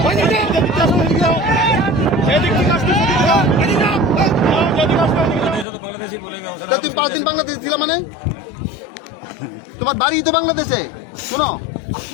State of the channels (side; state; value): right; drops out; at 5.7 s